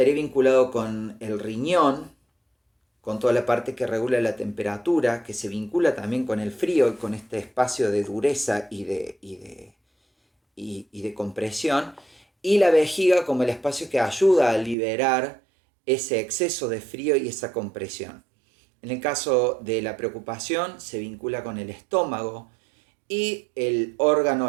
vinculado con el riñón, con toda la parte que regula la temperatura, que se vincula también con el frío y con este espacio de dureza y de compresión, y la vejiga como el espacio que ayuda a liberar ese exceso de frío y esa compresión. En el caso de la preocupación se vincula con el estómago y el órgano,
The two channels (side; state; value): left; drops out; at 14.8 s